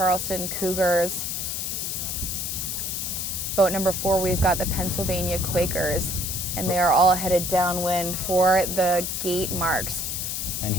Cougars. Boat number 4, we've got the Pennsylvania Quakers. And they are all headed downwind for the gate marks. And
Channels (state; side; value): noise; left; hiss, 2 dB below the sound